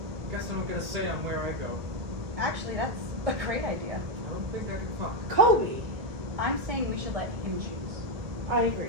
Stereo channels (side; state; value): left; late; 2.0 ms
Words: Guess I don't get a say on where I go. Actually, that's a great idea. I don't think I can fuck. Cobi! I'm saying we should let him choose. I